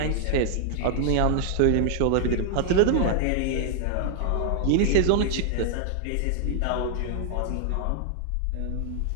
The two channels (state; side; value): different; both; correlation 0.00